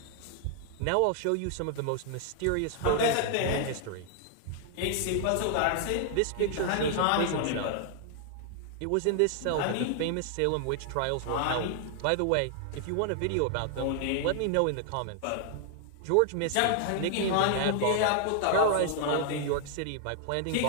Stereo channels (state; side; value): different; both; correlation 0.00